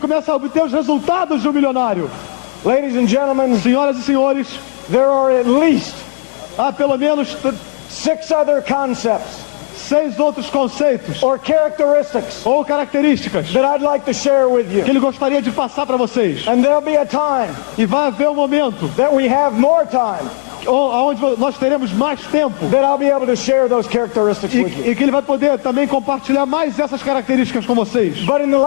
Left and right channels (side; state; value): right; silent; digital silence